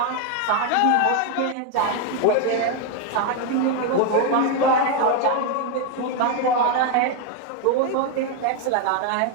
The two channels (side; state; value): both; different; correlation 0.01